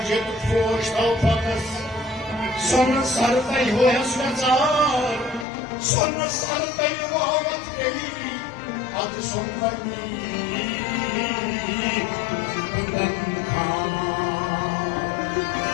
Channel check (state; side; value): drops out; right; at 5.5 s